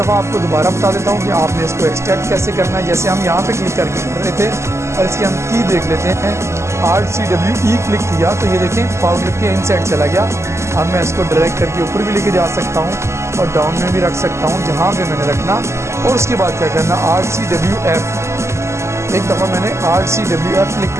आपको दोबारा बता देता हूँ कि आपने इसको एक्सट्रैक्ट कैसे करना है। जैसे हम यहाँ पे क्लिक करके कर रहे थे और इसकी हम की देख लेते हैं, Alt+C+W+E क्लिक किया तो ये देखें पावर क्लिप के इनसाइड चला गया। अब मैं इसको ड्रैग करके ऊपर भी लेके जा सकता हूँ और डाउन में भी रख सकता हूँ जहाँ पे मैंने रखना। और उसके बाद क्या करना, Alt+C+W+F, एक दफ़ा मैंने Alt+C+W+F क्लिक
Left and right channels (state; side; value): late; left; 0.13 ms